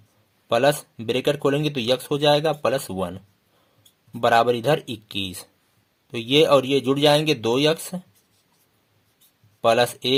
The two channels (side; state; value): both; identical; correlation 1.00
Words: प्लस ब्रैकेट खोलेंगे तो x हो जाएगा +1 बराबर इधर 21। तो ये और ये जुड़ जाएंगे, 2x +